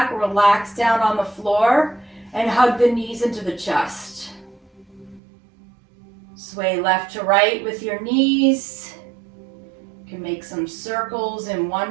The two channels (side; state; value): left; drops out; at 5.2 s